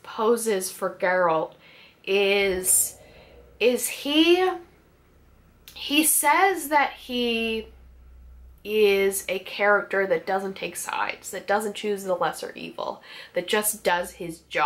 poses for Geralt is he says that he is a character that doesn't take sides, that doesn't choose the lesser evil, that just does his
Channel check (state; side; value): identical; both; correlation 1.00